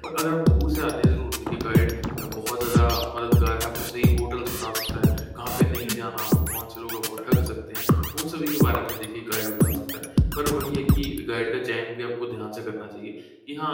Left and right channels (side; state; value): both; identical; correlation 1.00